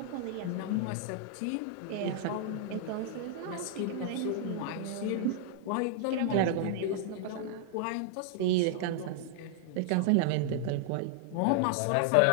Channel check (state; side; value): different; both; correlation 0.00